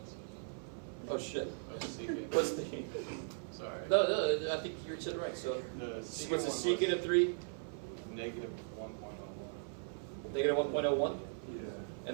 Oh shit. I was secant. What's the... Sorry. No, I think you said it right. So what's the secant of 3? Negative 1.01. Negative 1.01. Yeah.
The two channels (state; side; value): silent; left; 52 dB below the other